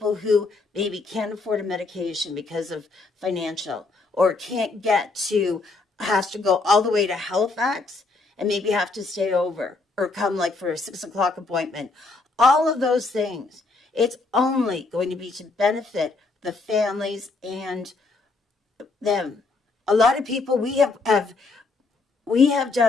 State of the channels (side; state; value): right; quieter; 3.7 dB